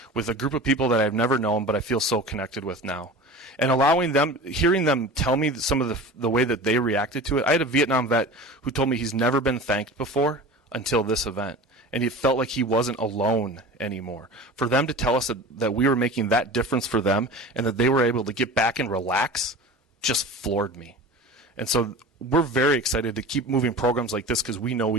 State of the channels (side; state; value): both; normal; correlation 0.35